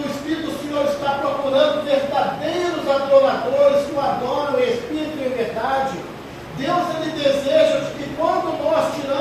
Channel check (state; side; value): identical; both; correlation 1.00